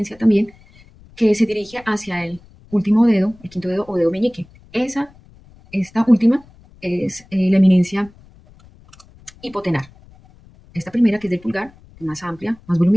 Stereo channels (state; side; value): noise; left; rumble, 26 dB below the sound